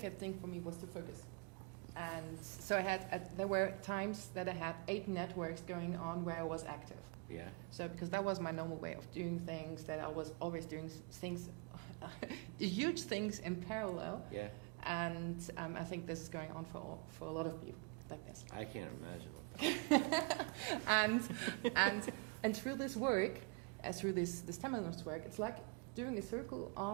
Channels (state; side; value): quieter; left; 30.0 dB